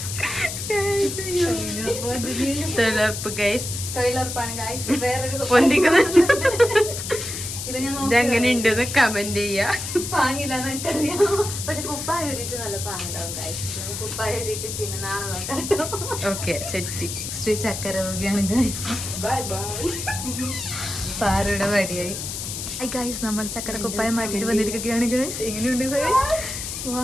തൊഴിലുറപ്പ് ഗൈസ്, ഇതെങ്ങനെ ഉണ്ടെന്ന് കമന്റ് ചെയ്യാ. പാങ്ങില്ലാന്ന് എനിക്കറിയാം, പക്ഷെ കുപ്പായ ഒരുട്ട് നല്ല പാങ്ങുണ്ടാവും ഗൈസ്. കുപ്പായ ഒരുട്ട് പിന്നെ നാളെ നോക്കാം. Okay set. ശ്രീ ചക്കരവുകയാണ് ഗൈസ്. Bye bye. പാറയുടെ വടിയായി ഗൈസ്. നമ്മൾ ചക്കര കുപ്പായം മാറ്റിട്ട് വന്നിരിക്കുകയാണ് ഗൈസ്. എങ്ങനെയുണ്ട് ഗൈസ്?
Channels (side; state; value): left; noise; hiss, 6 dB below the sound